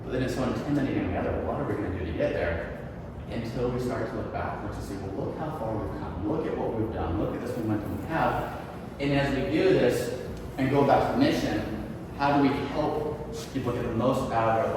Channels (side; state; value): both; identical; correlation 1.00